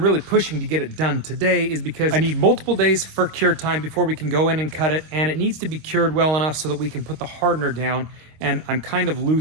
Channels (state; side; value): late; left; 26 ms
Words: really pushing to get it done today is because I need multiple days for cure time before we can go in and cut it, and it needs to be cured well enough so that we can put the hardener down, and I'm kind of